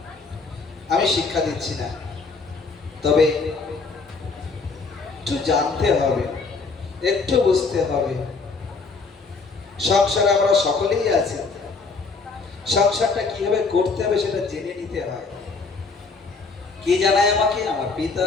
আমি শিক্ষা দিচ্ছি না, তবে একটু জানতে হবে, একটু বুঝতে হবে। সংসারে আমরা সকলেই আছি, সংসারটা কিভাবে করতে হবে সেটা জেনে নিতে হয়। কে জানায় আমাকে? আমার পিতা,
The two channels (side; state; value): right; quieter; 4.3 dB